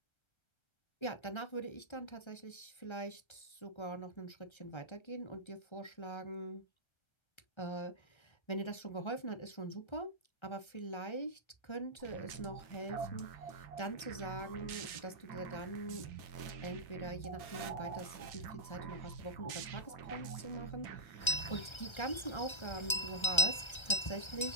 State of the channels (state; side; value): late; right; 1.3 ms